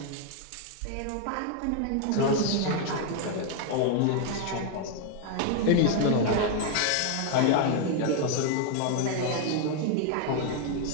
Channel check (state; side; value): different; both; correlation 0.00